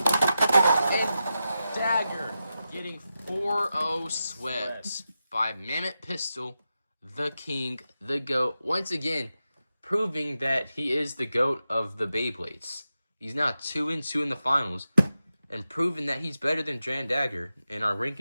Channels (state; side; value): inverted; both; correlation -0.91